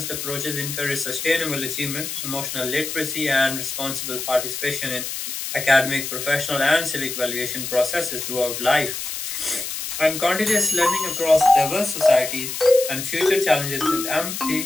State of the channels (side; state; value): left; noise; hiss, 5 dB below the sound